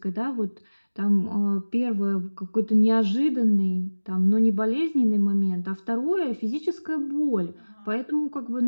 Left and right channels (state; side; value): inverted; both; correlation -1.00